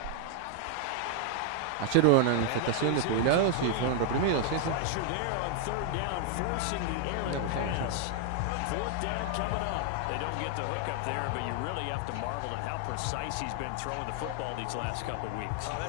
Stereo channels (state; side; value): different; both; correlation 0.00